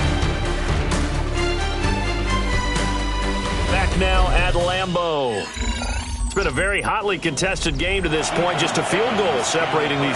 Back now at Lambeau. It's been a very hotly contested game to this point. Just a field goal separating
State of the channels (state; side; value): identical; both; correlation 1.00